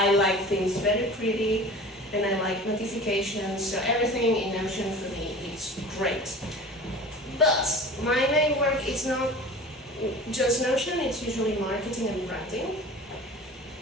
like things very pretty, and I like notifications, so everything in Notion for me is great. But my main work is not just Notion, it's usually marketing and branding.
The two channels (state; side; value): normal; both; correlation 0.39